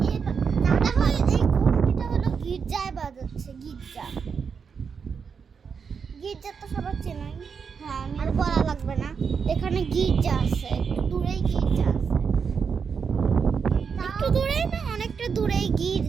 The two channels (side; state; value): left; quieter; 6.1 dB